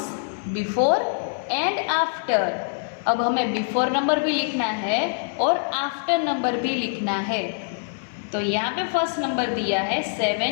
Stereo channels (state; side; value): silent; right; 62 dB below the other